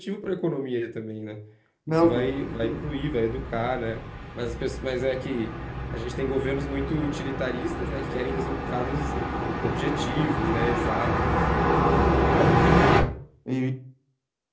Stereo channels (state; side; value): identical; both; correlation 1.00